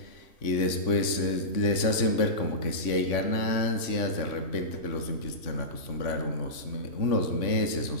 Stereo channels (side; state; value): right; late; 3.5 ms